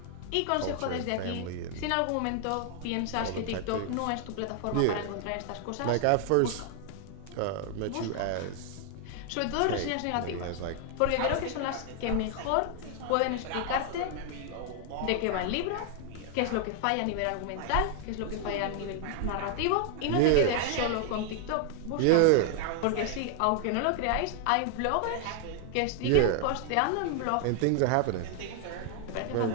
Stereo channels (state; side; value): different; both; correlation 0.00